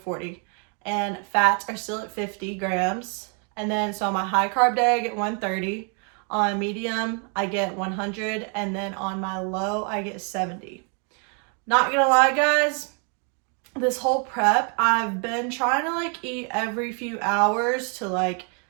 and fats are still at 50 grams. And then so on my high carb day I get 130, on medium I get 100, and then on my low I get 70. Not gonna lie guys, this whole prep I've been trying to eat every few hours to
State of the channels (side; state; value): left; quieter; 39.1 dB